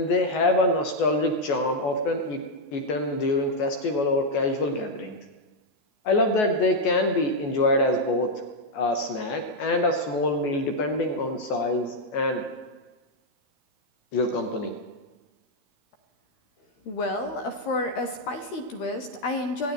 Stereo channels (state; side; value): late; right; 14 ms